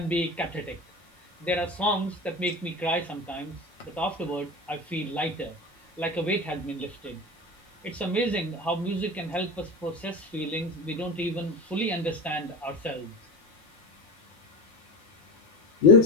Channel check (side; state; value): both; normal; correlation 0.26